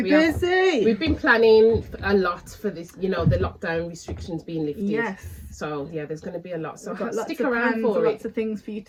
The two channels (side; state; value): both; identical; correlation 1.00